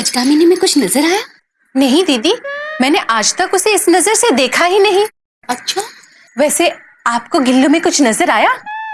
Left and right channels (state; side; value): identical; both; correlation 1.00